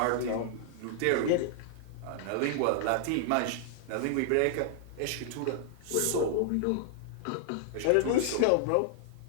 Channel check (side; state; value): both; different; correlation -0.01